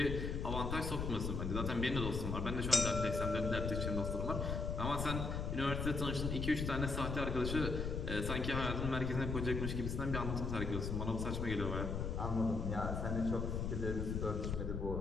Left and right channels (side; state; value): left; noise; rumble, 2 dB below the sound